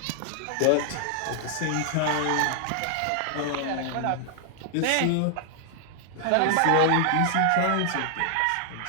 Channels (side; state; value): both; different; correlation 0.00